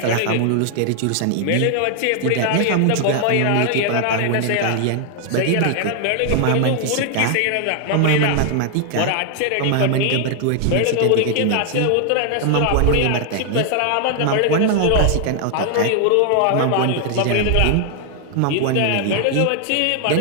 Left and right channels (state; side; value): different; both; correlation 0.00